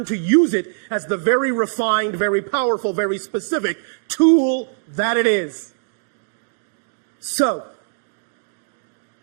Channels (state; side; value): silent; left; digital silence